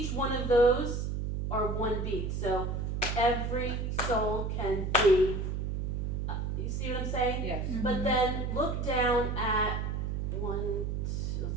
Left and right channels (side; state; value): right; noise; hum, 1 dB below the sound